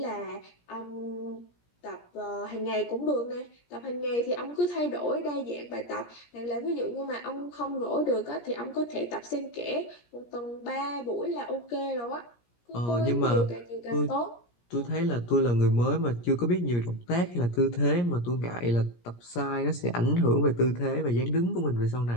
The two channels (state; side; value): late; right; 17 ms